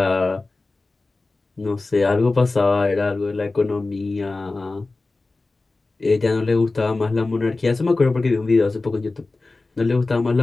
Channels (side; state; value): right; quieter; 3.4 dB